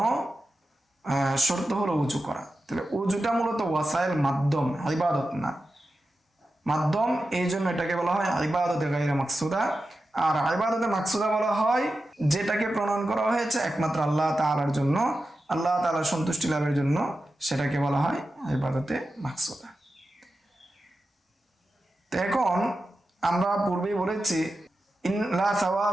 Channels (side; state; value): both; normal; correlation 0.92